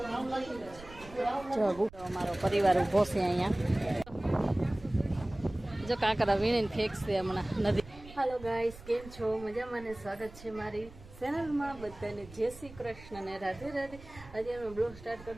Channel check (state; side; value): noise; right; rumble, 18 dB below the sound